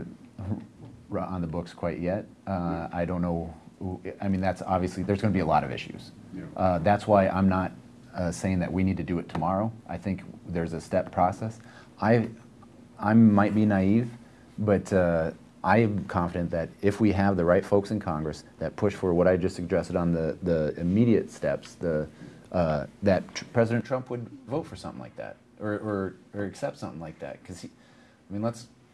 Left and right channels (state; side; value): identical; both; correlation 1.00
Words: on the books quite yet. I don't know. I mean, that's obviously, there's going to be a lot of issues. Yeah. That's why I'm not saying that we need to do it tomorrow. I think there's a step process. I might be naive, but I am confident that if we have the right folks in Congress that push for what I just suggested on the immediate steps, that President Trump would vote for something like that, or accept something like that. Because